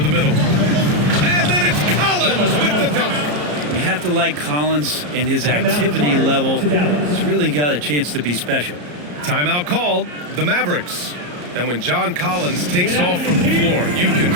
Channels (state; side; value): late; left; 34 ms